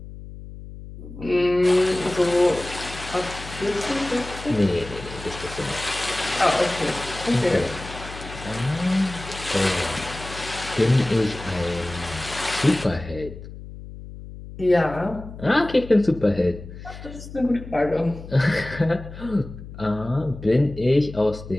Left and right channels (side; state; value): left; noise; hum, 13 dB below the sound